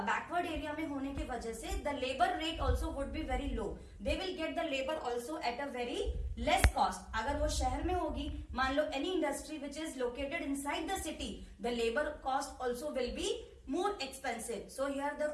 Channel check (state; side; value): identical; both; correlation 1.00